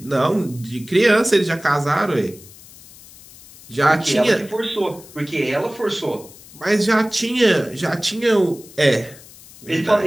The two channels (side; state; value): left; noise; hiss, 21 dB below the sound